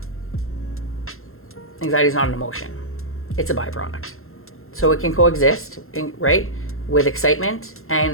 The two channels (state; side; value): late; right; 0.62 ms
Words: Anxiety is not an emotion. It's a byproduct. So it can coexist, right, with excitement,